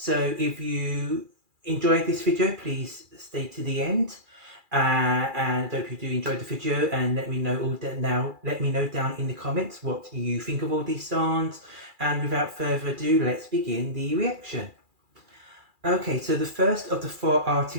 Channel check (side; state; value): left; late; 2.4 ms